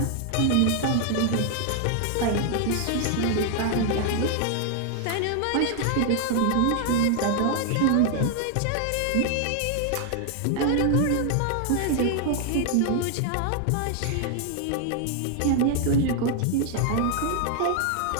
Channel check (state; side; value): different; both; correlation 0.00